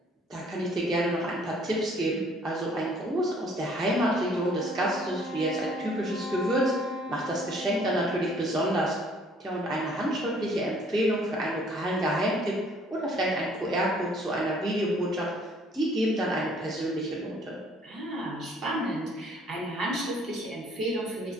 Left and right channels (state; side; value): normal; both; correlation 0.59